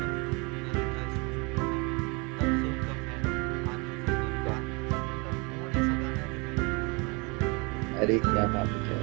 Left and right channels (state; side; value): quieter; left; 29.5 dB